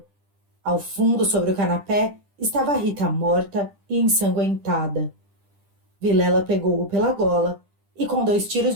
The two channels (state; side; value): late; left; 10 ms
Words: Ao fundo, sobre o canapé, estava Rita morta e ensanguentada. Vilela pegou-o pela gola e, com 2 tiros